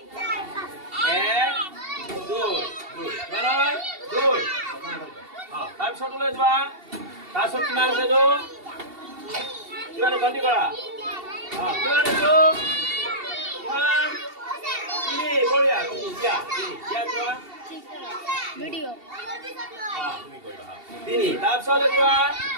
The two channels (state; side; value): late; left; 2.7 ms